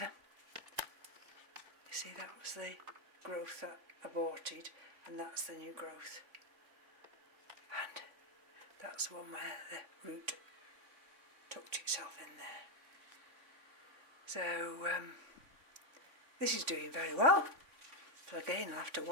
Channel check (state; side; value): late; left; 3.5 ms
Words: You see, that was the growth that aborted, and that's the new growth. And that's the one where the root tucked itself in there. So this is doing very well. So again, I'll have to